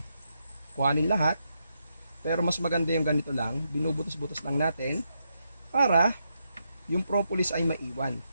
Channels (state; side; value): inverted; both; correlation -0.82